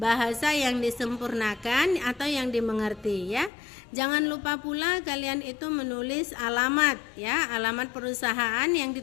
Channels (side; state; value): right; drops out; at 3.5 s